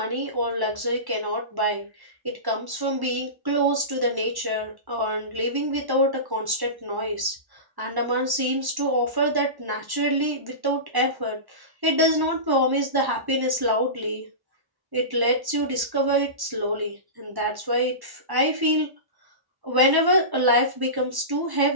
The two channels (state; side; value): late; left; 1.1 ms